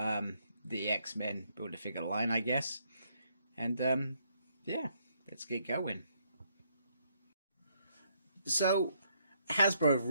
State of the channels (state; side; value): inverted; both; correlation -0.73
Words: the X-Men Build-A-Figure line, I guess. And yeah, let's get going. So Hasbro have